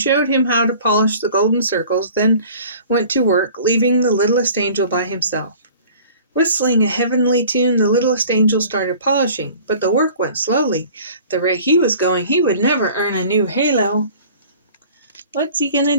him how to polish the golden circles, then went to work, leaving the littlest angel by himself. Whistling a heavenly tune, the littlest angel started polishing, but the work went slowly. At the rate he was going, he would never earn a new halo. What's he gonna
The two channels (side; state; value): both; inverted; correlation -0.47